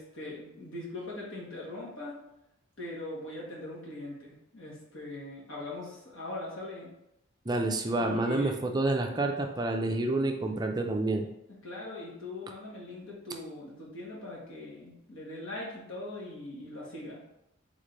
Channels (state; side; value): normal; both; correlation 0.56